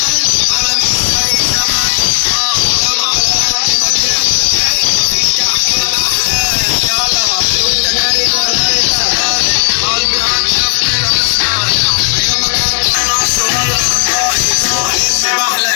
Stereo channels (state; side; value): silent; right; digital silence